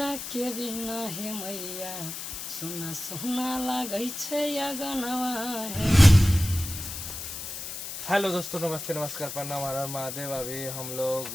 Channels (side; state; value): left; noise; hiss, 8 dB below the sound